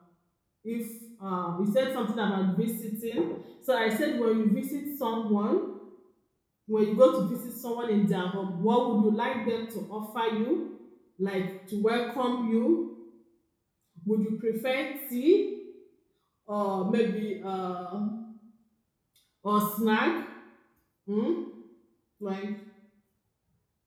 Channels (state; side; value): identical; both; correlation 1.00